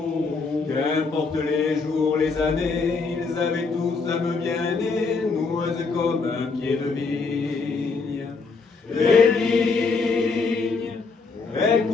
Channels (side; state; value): right; quieter; 4.4 dB